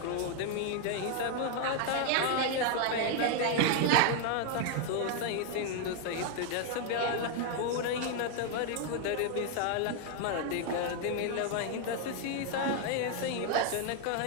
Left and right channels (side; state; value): both; different; correlation 0.00